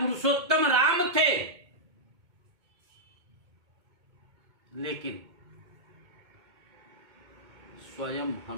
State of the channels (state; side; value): late; left; 2.2 ms